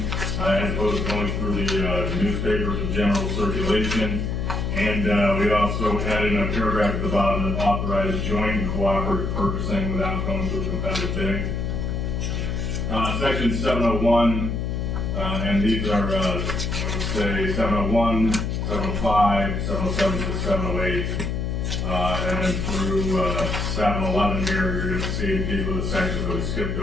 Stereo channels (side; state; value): left; noise; hum, 1 dB below the sound